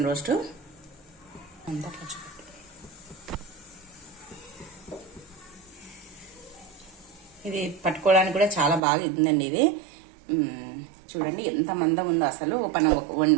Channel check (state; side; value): drops out; left; at 8.8 s